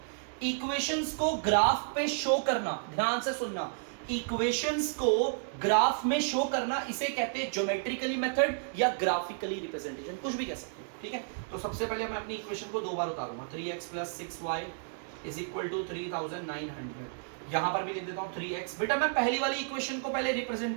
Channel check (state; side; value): silent; left; digital silence